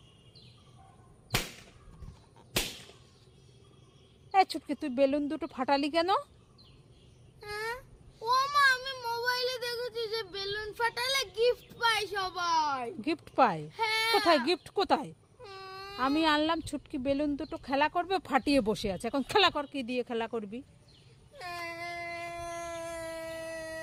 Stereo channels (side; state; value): both; identical; correlation 1.00